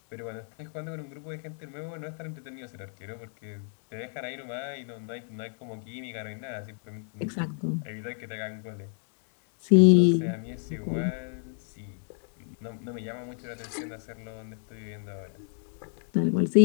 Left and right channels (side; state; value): right; silent; 58 dB below the other